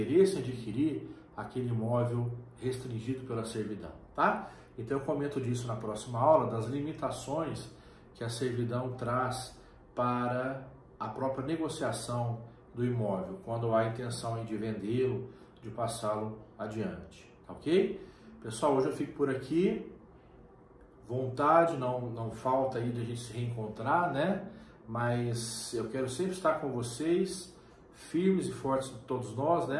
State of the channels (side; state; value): both; identical; correlation 1.00